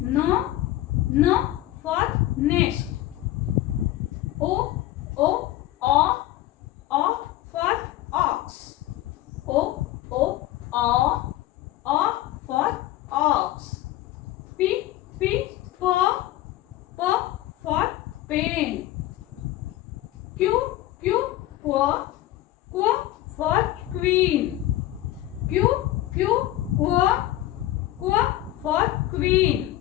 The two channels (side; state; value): right; quieter; 14.8 dB